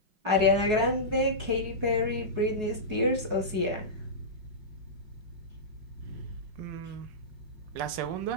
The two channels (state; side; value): late; left; 5.5 ms